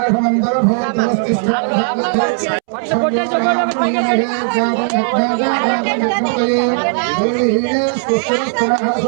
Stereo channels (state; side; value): silent; left; 69 dB below the other